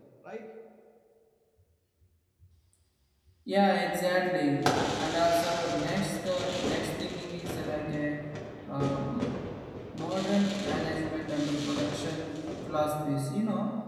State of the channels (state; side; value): identical; both; correlation 1.00